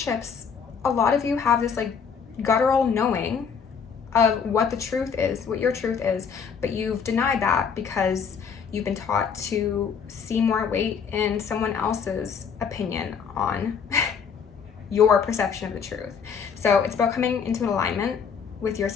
a lot of you have this like guttural knowing of what the truth is, what your truth is, but you've denied that because you've been taught to see more weight in someone else's opinion on your perception of the truth. So it's about coming into an alignment with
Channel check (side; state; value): right; quieter; 6.5 dB